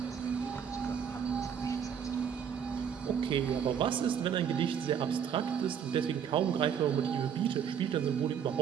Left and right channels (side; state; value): left; quieter; 7.9 dB